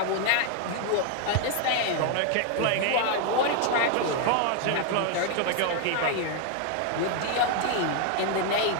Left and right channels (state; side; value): different; both; correlation 0.00